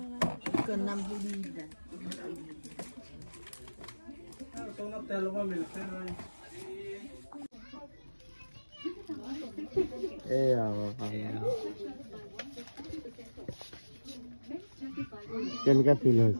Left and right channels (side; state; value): both; inverted; correlation -1.00